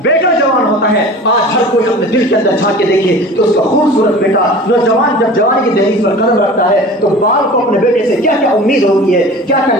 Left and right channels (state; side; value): normal; both; correlation 0.39